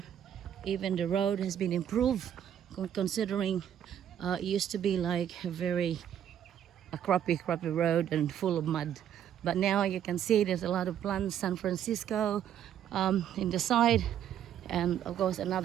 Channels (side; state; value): left; quieter; 10.0 dB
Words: Even the road has been improved, considering it used to be like a crappy road and full of mud. But now you can see there's a lot of plants. San Francisco in the side, and of course